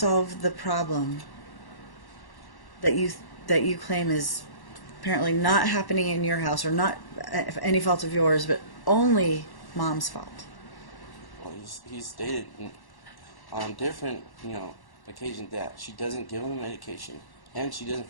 the problem that you claim is apparently not happening in your house, or not any fault of yours, but only mom's fault? Well, he's stated on different occasions that she doesn't give him medication and she doesn't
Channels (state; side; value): late; right; 1.1 ms